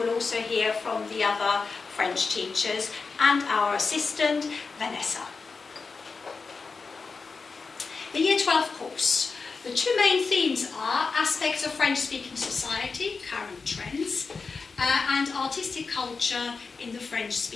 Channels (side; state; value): right; quieter; 4.6 dB